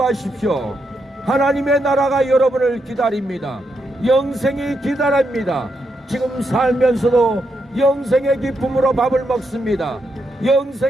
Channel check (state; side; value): normal; both; correlation 0.81